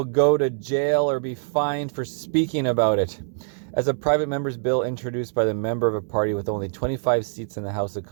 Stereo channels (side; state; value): left; silent; 63 dB below the other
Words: go to jail or be fined for speaking about it. As a private member's bill introduced by the member of a party with only 25 seats in the House of